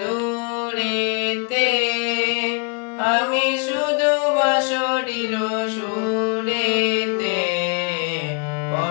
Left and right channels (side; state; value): right; quieter; 32.4 dB